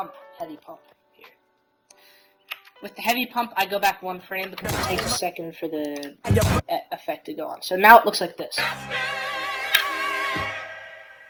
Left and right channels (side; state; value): both; identical; correlation 1.00